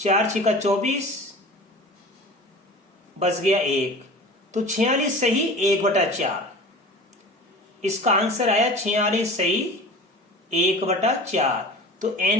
छिका 24, बच गया 1, तो 46 सही 1/4। इसका आंसर आया 46 सही 1/4। तो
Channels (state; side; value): normal; both; correlation 0.38